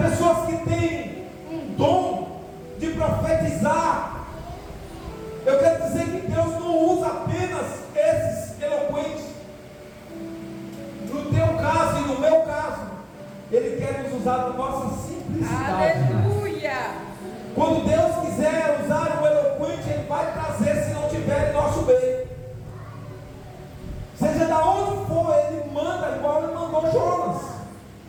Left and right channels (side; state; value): both; identical; correlation 1.00